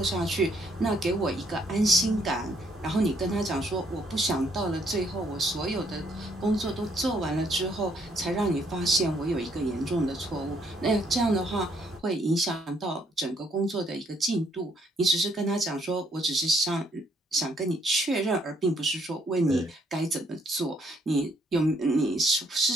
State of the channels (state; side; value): normal; both; correlation 0.68